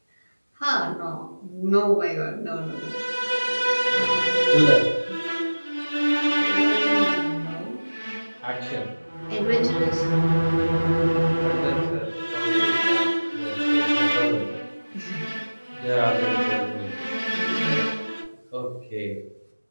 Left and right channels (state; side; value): inverted; both; correlation -1.00